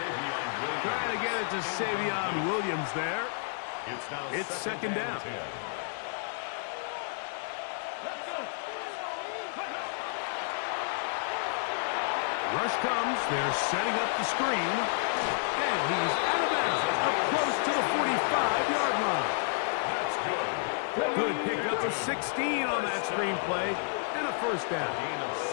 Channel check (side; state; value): right; silent; digital silence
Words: Trying to get it to Savion Williams there. It's second down. Rush comes. They're setting up the screen. And he's out of bounds, up close to the 45-yard line. That's good. Good pick up of 16 on that screenplay, and a first down. Gain of